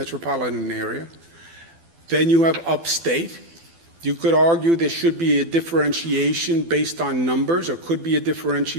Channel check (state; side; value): late; left; 12 ms